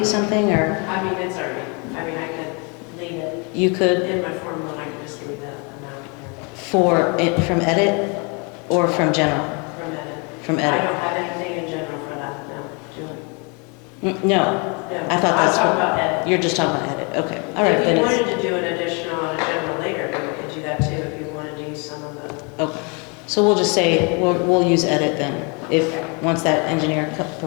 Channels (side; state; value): right; quieter; 32.6 dB